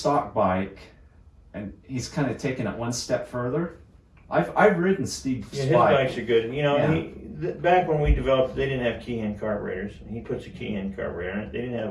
bike and he's kind of taken it one step further. I've ridden Steve's Yeah, his bike. bikes are good. You know, Yeah. back when we developed, they didn't have key-hand carburetors. He puts a key-hand carburetor in it. He's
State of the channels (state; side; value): identical; both; correlation 1.00